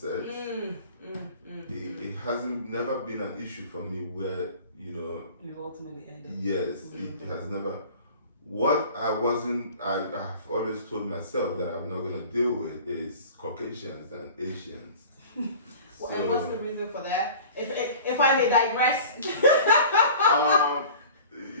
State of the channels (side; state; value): both; inverted; correlation -0.43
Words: It hasn't never been an issue for me where, You ultimately ended. yes, it has never. What I've always told myself that I'm not going to deal with is Caucasians and Asians. And what's the reason for that? If I may digress.